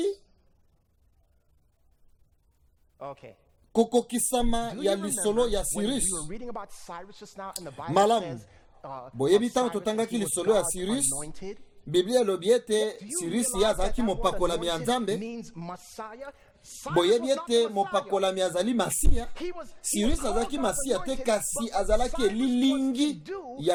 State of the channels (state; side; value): identical; both; correlation 1.00